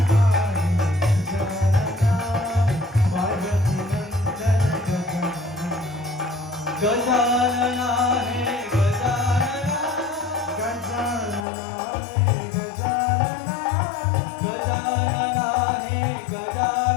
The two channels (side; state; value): right; drops out; at 11.5 s